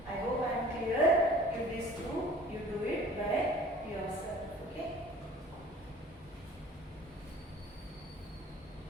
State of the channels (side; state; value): both; normal; correlation 0.49